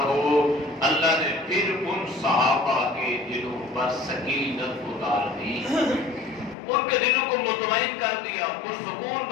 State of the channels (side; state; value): right; drops out; at 6.6 s